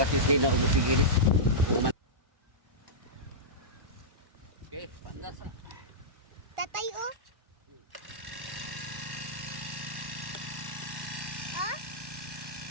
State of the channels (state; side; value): late; left; 1.1 ms